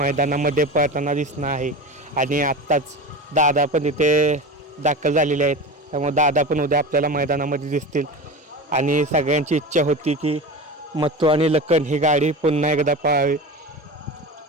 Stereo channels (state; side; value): normal; both; correlation 0.28